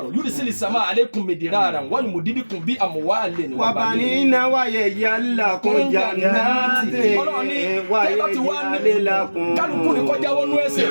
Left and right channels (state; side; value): inverted; both; correlation -1.00